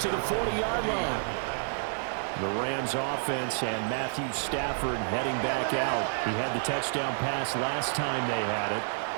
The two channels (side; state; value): left; silent; 58 dB below the other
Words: to the 40-yard line. The Rams offense and Matthew Stafford heading back out. He had the touchdown pass last time they had it.